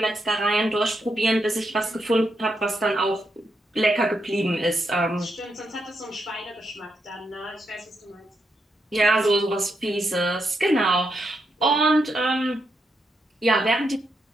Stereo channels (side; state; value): both; normal; correlation 0.82